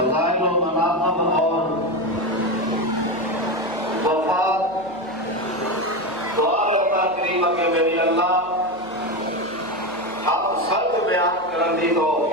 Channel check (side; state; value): right; noise; hum, 29 dB below the sound